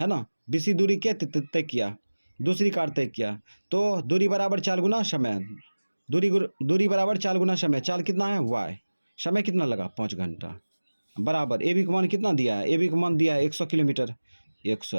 ना, BC दूरी क्या तय किया, दूसरी कार तय किया। तो दूरी बराबर चाल गुना समय, दूरी बराबर चाल गुना समय। चाल कितना है y, समय कितना लगा 5 घंटा, बराबर AB का मान कितना दिया है, AB का मान दिया है 100 किलोमीटर,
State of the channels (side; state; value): both; inverted; correlation -1.00